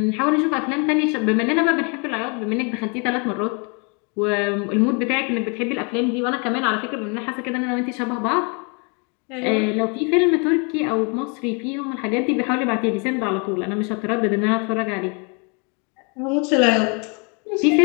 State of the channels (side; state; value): right; quieter; 34.5 dB